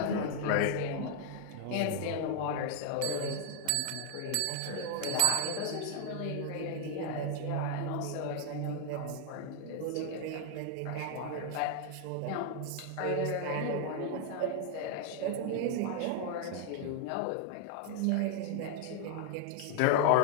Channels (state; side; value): different; both; correlation 0.00